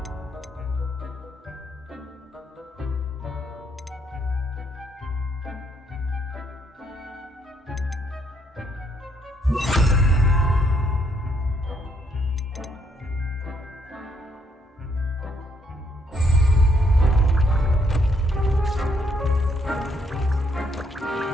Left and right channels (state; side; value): normal; both; correlation 0.72